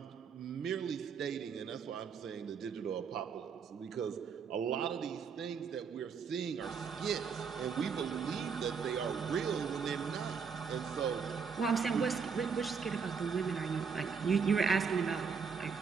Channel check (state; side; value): quieter; left; 6.0 dB